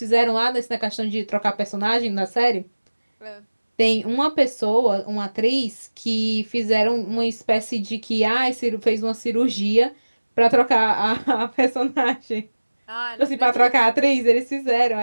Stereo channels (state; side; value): inverted; both; correlation -1.00